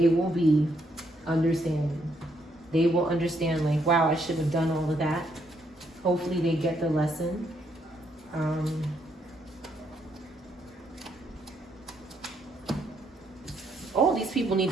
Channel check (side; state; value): both; normal; correlation 0.74